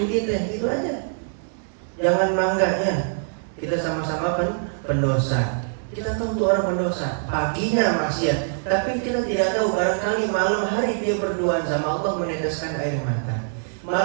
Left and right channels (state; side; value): silent; left; digital silence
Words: kita, gitu aja. Jangan bangganya, kita sama-sama pendosa. Kita tahu tuh orang pendosa, paginya maksiat, tapi kita tidak tahu barangkali malam hari dia berduaan sama Allah meneteskan air mata.